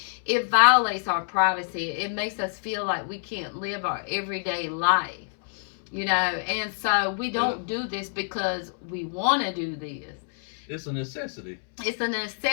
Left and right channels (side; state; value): right; silent; 60 dB below the other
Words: It violates our privacy. It makes us feel like we can't live our everyday life, and so we don't do this because we want to do this. It's a necessity. It's a